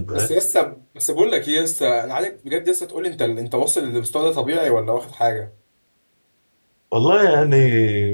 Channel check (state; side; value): inverted; both; correlation -1.00